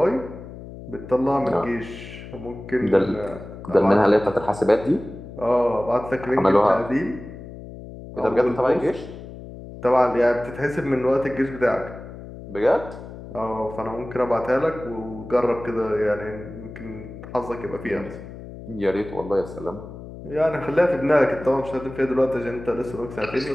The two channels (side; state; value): left; noise; hum, 13 dB below the sound